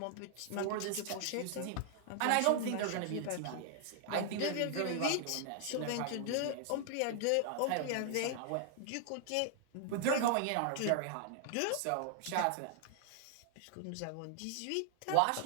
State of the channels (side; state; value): both; different; correlation 0.00